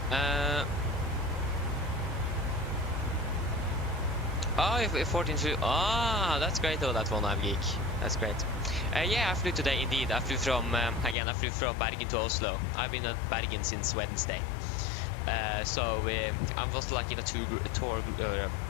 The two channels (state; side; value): drops out; right; at 11.2 s